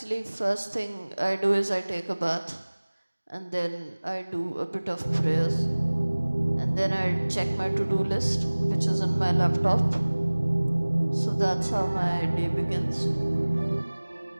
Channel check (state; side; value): inverted; both; correlation -1.00